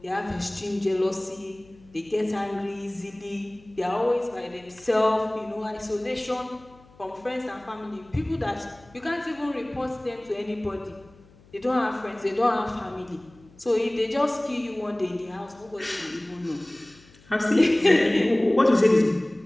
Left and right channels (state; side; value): noise; left; hum, 26 dB below the sound